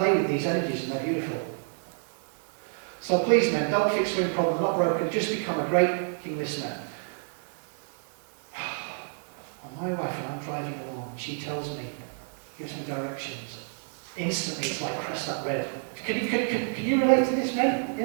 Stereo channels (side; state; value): left; silent; digital silence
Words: with these energies and they're beautiful. So please men, don't fix women problem, they're not broken, just become a great king listener. Well, my wife and I'm driving along, she tells me, gives me directions. Instantly it's like press that red. Can you relate to this, men?